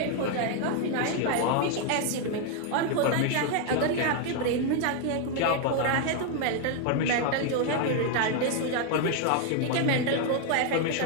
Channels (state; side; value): different; both; correlation 0.00